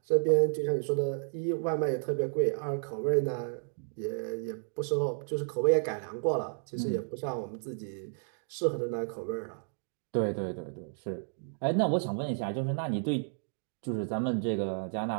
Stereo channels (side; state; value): left; silent; digital silence